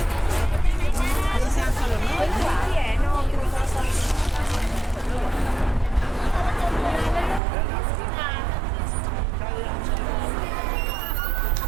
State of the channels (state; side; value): drops out; left; at 7.4 s